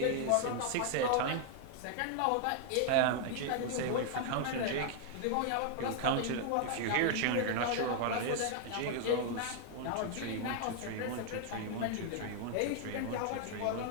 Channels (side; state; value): both; different; correlation 0.00